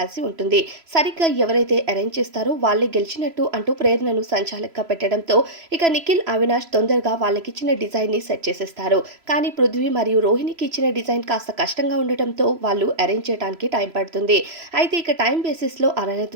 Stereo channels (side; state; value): left; late; 3.0 ms